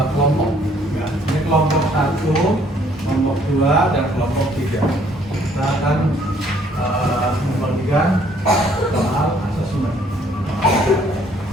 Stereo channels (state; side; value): normal; both; correlation 0.63